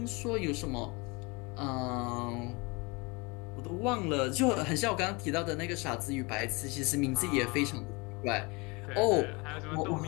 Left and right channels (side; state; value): right; quieter; 27.1 dB